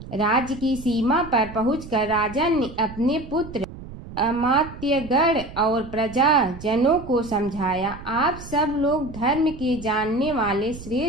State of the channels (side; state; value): right; noise; rumble, 14 dB below the sound